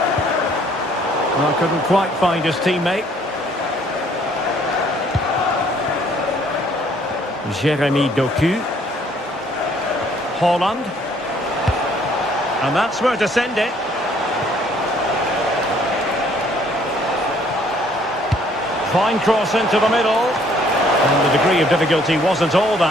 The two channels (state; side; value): normal; both; correlation 0.62